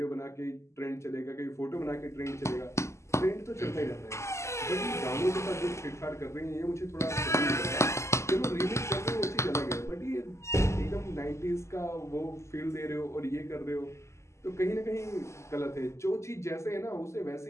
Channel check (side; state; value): right; late; 0.13 ms